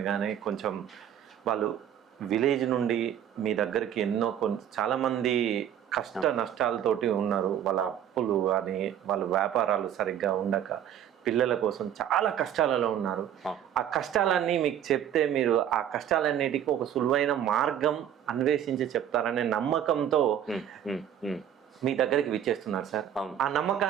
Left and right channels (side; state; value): left; quieter; 10.0 dB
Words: కొంచెం వాళ్ళు విలేజ్ నుండి మీ దగ్గరికి ఎన్నో చాలామంది కష్ట నష్టాలతోటి ఉన్నారు. వాళ్ళ అప్పులు అని, వాళ్ళ వ్యాపారాలు సరిగ్గా ఉండక, పిల్లల కోసం చాలా కష్టాలలో ఉన్నారు. ఆ కష్టాలన్నీ మీకు చెప్తే మీరు ఆ కష్టాలన్నిటికీ ఒక సులువైన మార్గం అన్వేషించి చెప్తారనే నమ్మకంతో మీ దగ్గరికి విచ్చేస్తున్నారు సార్. ఆ